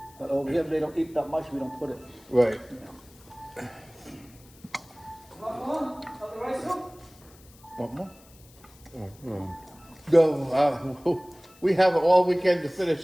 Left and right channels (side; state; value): left; noise; hiss, 26 dB below the sound